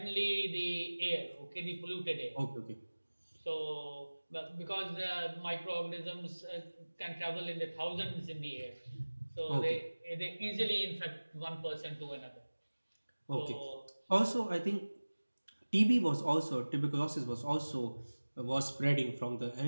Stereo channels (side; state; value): both; inverted; correlation -1.00